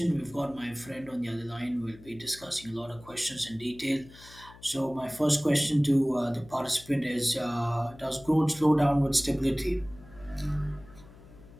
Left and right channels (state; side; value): noise; left; hum, 21 dB below the sound